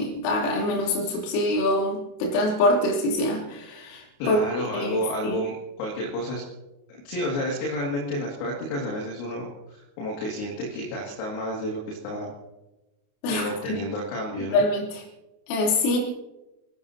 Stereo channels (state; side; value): late; right; 28 ms